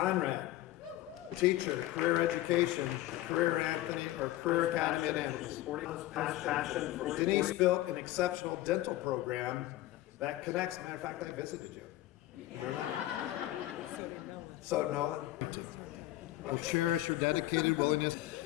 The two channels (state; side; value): quieter; right; 15.7 dB